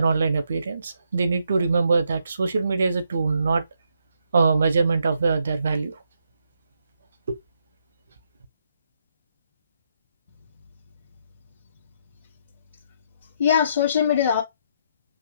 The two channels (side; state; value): both; inverted; correlation -0.76